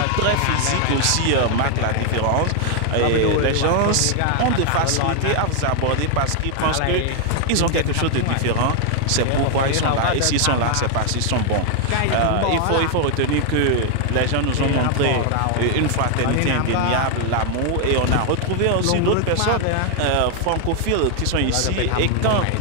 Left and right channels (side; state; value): both; different; correlation 0.00